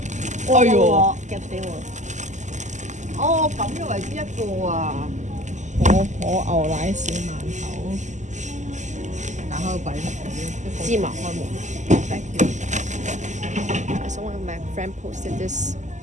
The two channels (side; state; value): left; late; 0.34 ms